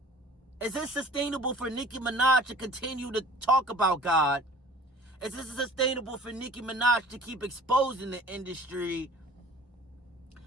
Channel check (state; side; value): normal; both; correlation 0.47